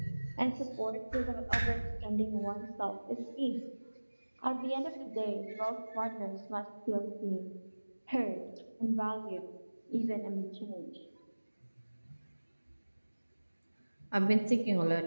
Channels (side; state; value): both; inverted; correlation -1.00